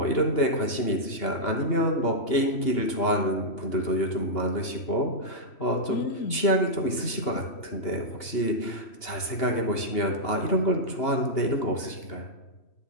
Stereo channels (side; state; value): right; late; 2.8 ms